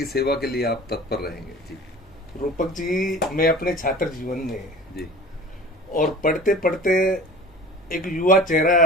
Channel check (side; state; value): both; normal; correlation 0.40